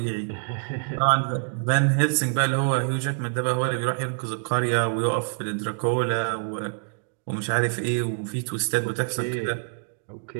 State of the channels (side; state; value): left; silent; digital silence